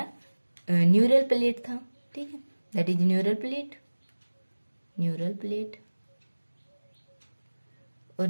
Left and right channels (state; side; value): inverted; both; correlation -1.00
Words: न्यूरल प्लेट था, ठीक है, that is neural plate, neural plate. और